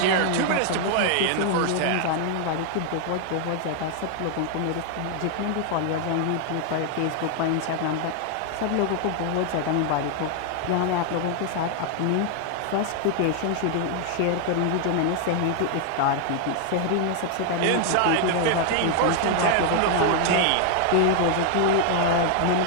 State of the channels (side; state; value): both; different; correlation 0.00